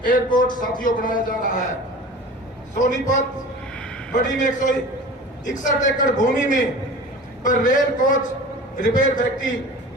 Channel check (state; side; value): normal; both; correlation 0.38